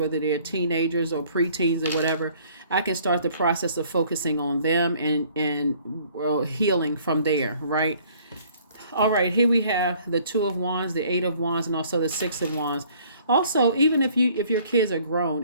they're teenagers or preteens or whatever, I can start the process of focusing on them and well, healing from there, right? All right, here we have the Two of Wands, the Eight of Wands, and also the Six of Wands. Also, even if your kids are grown,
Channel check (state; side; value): inverted; both; correlation -0.58